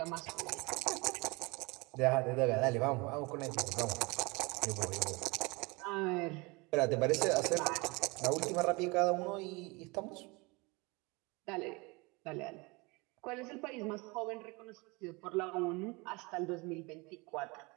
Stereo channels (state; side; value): quieter; left; 26.3 dB